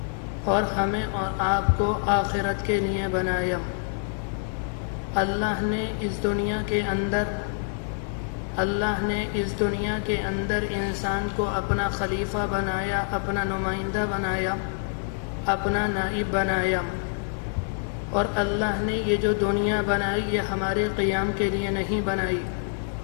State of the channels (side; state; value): right; silent; 61 dB below the other